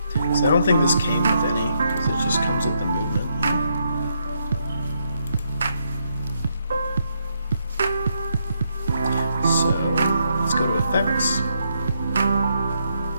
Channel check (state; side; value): inverted; both; correlation -0.77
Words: So I don't think this came with any, because it just comes with the movement. So let's go to effects.